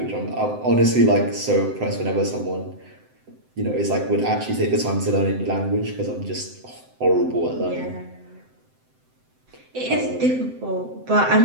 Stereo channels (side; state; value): left; late; 7.8 ms